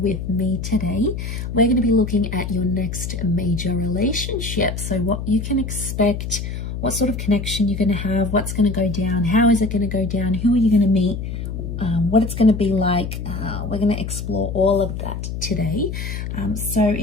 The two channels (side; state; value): left; noise; hum, 5 dB below the sound